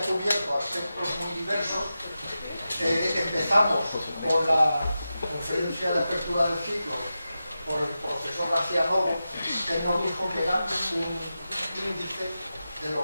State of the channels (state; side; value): inverted; both; correlation -0.92